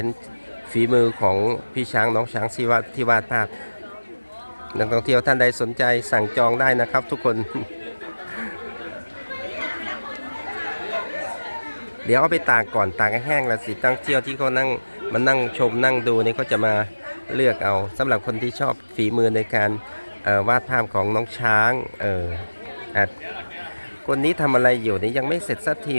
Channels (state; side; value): inverted; both; correlation -1.00